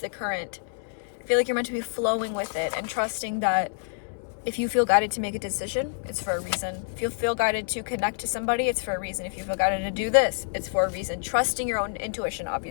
current. I feel like you're meant to be flowing with it and trusting that if you feel guided to make a decision, it's for a reason. If you feel guided to connect to somebody, it's for a reason. If you feel guided to do this, it's for a reason. Trusting your own intuition,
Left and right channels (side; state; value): right; silent; digital silence